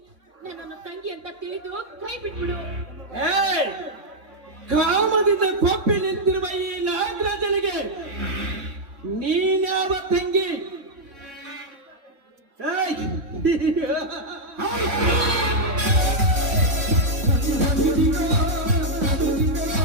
ನನ್ನನ್ನು ತಂಗಿ ಅಂತ ತಿಳಿದು ಕೈ ಬಿಟ್ಬಿಡು. ಕಾಮದಿಂದ ಕೊಪ್ಪಿ ನಿಂತಿರುವ ಈ ನಾಗರಾಜನಿಗೆ ನೀನ್ಯಾವ ತಂಗಿ?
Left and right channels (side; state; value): left; late; 3.6 ms